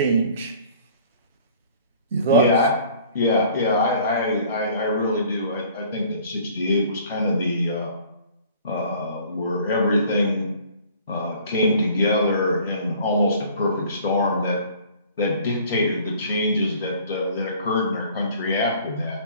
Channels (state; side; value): inverted; both; correlation -0.52